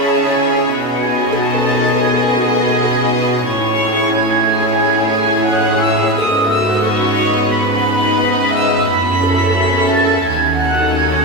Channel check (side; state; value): both; normal; correlation 0.19